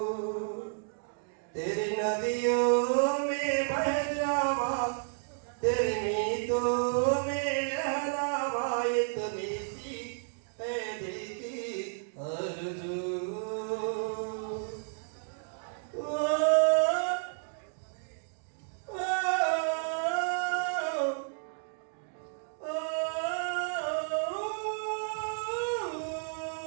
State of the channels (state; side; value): silent; left; digital silence